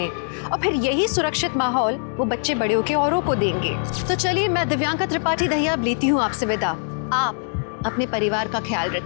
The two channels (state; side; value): silent; right; digital silence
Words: और फिर यही सुरक्षित माहौल वो बच्चे बड़े होकर औरों को देंगे। तो चलिए, मैं दिव्यांका त्रिपाठी दहिया अब लेती हूँ आपसे विदा। आप अपने परिवार का ख्याल